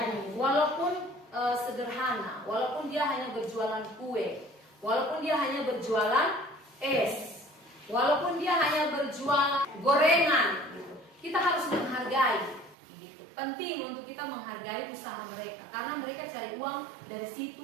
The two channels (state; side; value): drops out; left; at 12.8 s